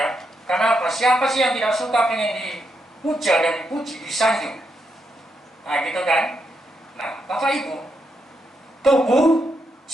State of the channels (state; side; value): normal; both; correlation 0.81